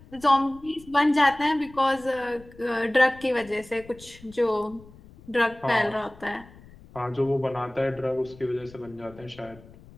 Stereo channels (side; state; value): left; noise; rumble, 22 dB below the sound